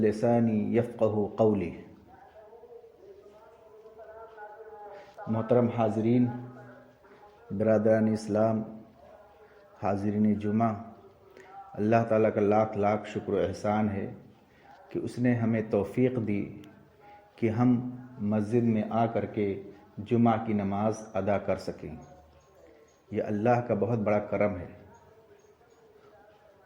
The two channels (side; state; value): both; identical; correlation 1.00